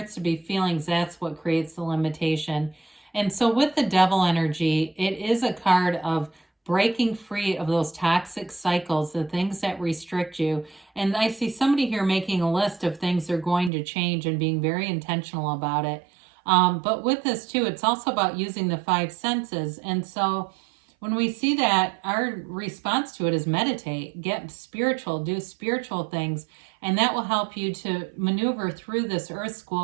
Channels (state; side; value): drops out; left; at 13.7 s